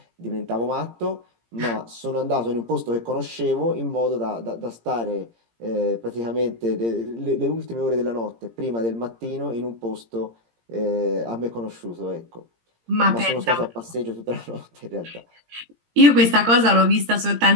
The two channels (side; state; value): left; late; 17 ms